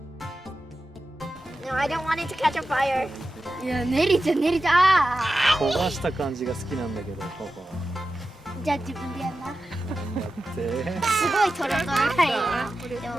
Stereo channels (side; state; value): both; normal; correlation 0.92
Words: No, I don't want it to catch on fire. いや、練りちゃ焦がした感じが好きなんだけど、パパは。じゃあ自分でやんな。だって。すごいトロトロだよ。これでも